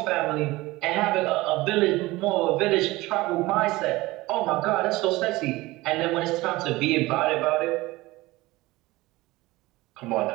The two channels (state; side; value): quieter; left; 19.8 dB